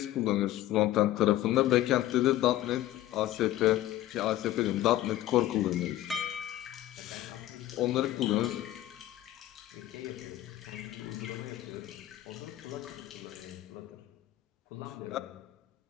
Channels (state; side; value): quieter; right; 14.4 dB